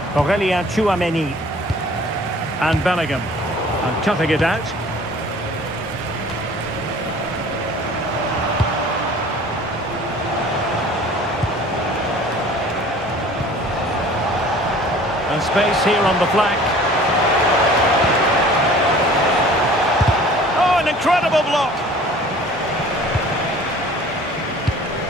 Aurélien Tchouaméni. And Bellingham. And cutting it out. And space here on the flank. Incredible block.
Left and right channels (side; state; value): both; normal; correlation 0.48